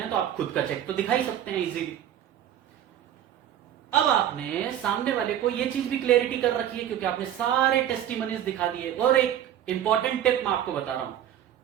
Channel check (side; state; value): left; quieter; 10.8 dB